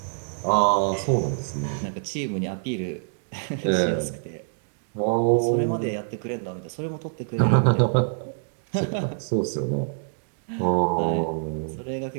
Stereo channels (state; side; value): silent; left; digital silence